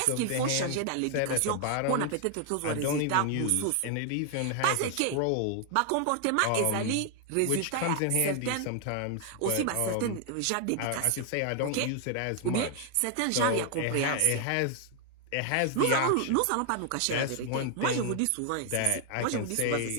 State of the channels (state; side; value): different; both; correlation 0.00